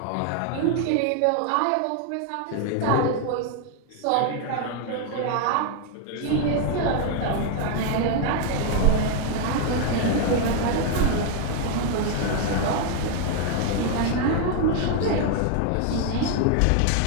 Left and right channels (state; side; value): different; both; correlation 0.00